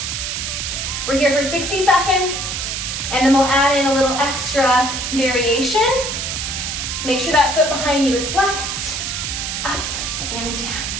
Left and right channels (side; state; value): right; noise; hiss, 3 dB below the sound